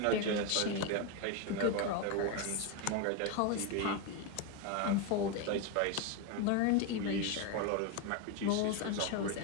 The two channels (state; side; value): different; both; correlation 0.03